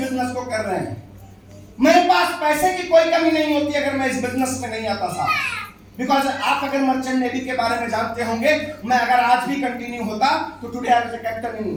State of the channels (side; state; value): both; identical; correlation 1.00